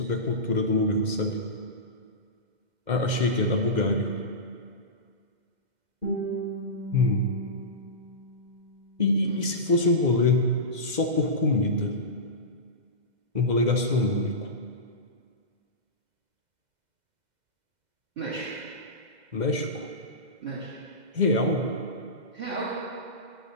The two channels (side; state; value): left; late; 2.0 ms